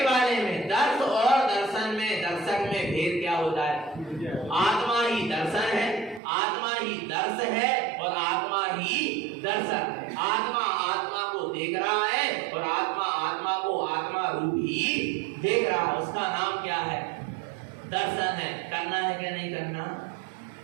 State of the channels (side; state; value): left; drops out; at 6.2 s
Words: वाले में, दर्श और दर्शन में, दर्शक में भेद क्या हो जाए। आत्मा ही दर्शन है, आत्मा ही दर्श है और आत्मा ही दर्शक है। आत्मा आत्मा को देख रहा है और आत्मा आत्मा को आत्मा रूप ही देख रहा है। उसका नाम क्या है, दर्शन है। करना है क्या नहीं करना।